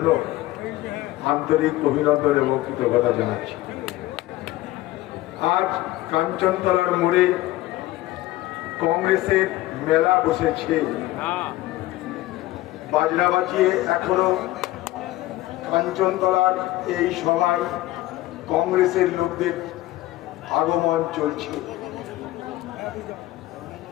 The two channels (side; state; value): right; quieter; 16.7 dB